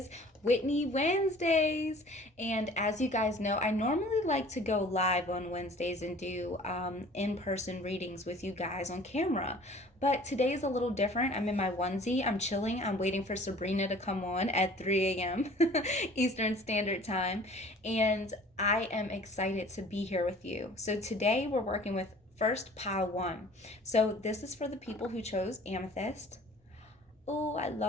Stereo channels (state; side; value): normal; both; correlation 0.49